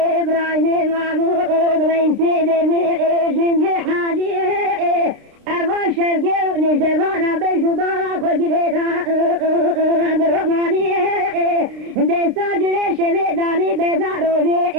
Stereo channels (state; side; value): late; left; 29 ms